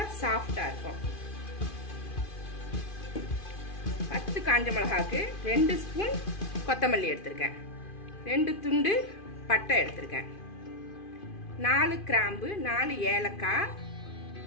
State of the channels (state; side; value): late; right; 2.5 ms